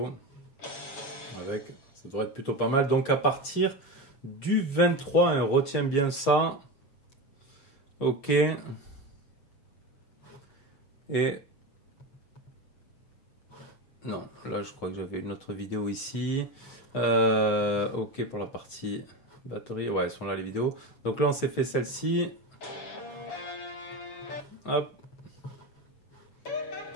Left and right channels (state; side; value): late; right; 7.2 ms